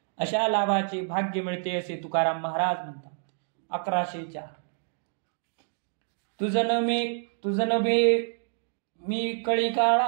अशा लाभाचे भाग्य मिळते असे तुकाराम महाराज म्हणतात. 1104 तुझन मे मी कळी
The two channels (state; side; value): silent; left; digital silence